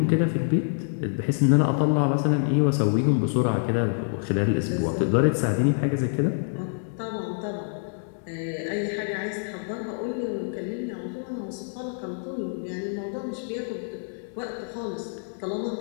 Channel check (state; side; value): silent; right; digital silence